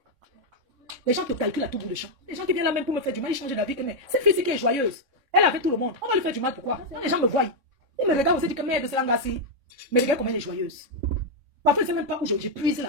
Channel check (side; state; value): left; late; 3.6 ms